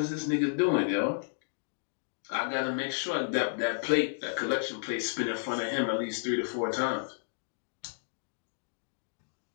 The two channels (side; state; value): right; silent; digital silence